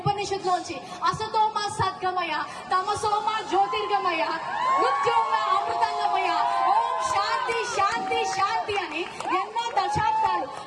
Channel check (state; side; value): identical; both; correlation 1.00